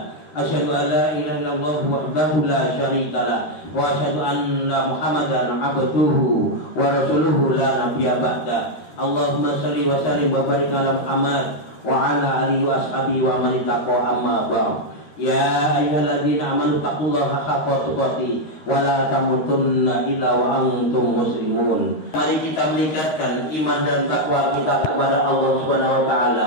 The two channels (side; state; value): right; late; 13 ms